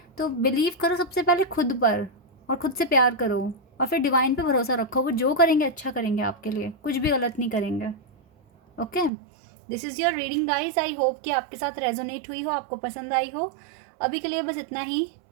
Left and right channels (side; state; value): left; drops out; at 9.1 s